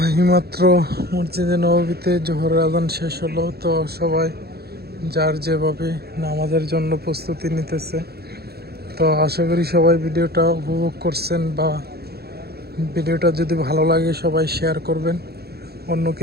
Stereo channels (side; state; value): left; late; 0.46 ms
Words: এইমাত্র মসজিদে নববীতে জোহরের আজান শেষ হলো। তো সবাই যার যেভাবে নামাজের জন্য প্রস্তুতি নিতেছে। তো আশা করি সবাই ভিডিওটা উপভোগ করছেন, বা ভিডিওটা যদি ভালো লাগে সবাই শেয়ার করবেন,